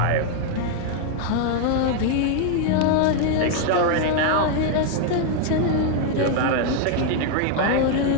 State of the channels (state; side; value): different; both; correlation 0.00